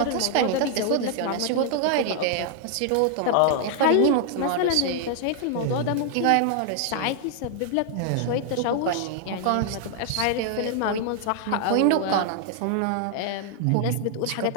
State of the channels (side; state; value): both; different; correlation 0.00